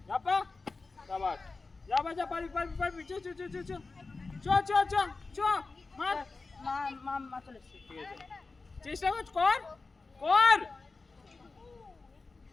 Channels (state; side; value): quieter; right; 3.9 dB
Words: शाबाश जा पारी चो मार চলে এসেছে ঠিক আছে চেষ্টা কর